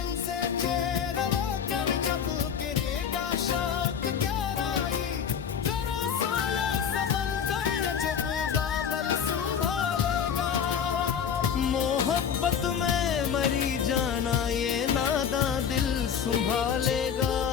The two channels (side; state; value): right; quieter; 7.8 dB